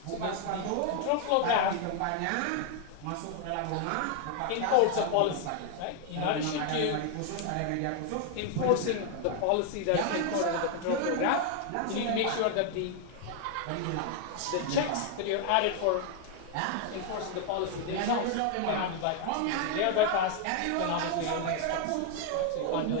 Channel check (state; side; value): different; both; correlation 0.00